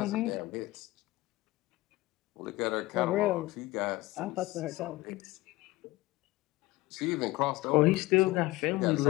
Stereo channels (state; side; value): quieter; right; 19.5 dB